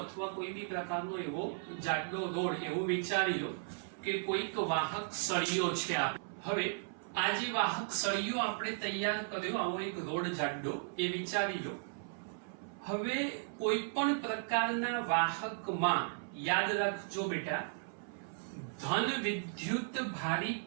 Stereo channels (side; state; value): left; silent; 54 dB below the other